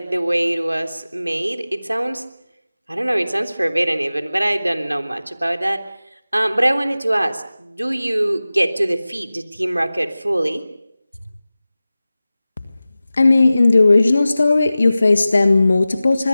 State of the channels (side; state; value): both; inverted; correlation -0.97